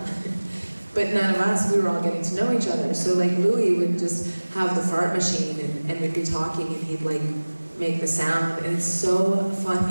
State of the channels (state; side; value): inverted; both; correlation -1.00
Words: none of us, we were all getting to know each other. So like Louis would just have the fart machine and we'd be talking and he'd like make the sound. And it's so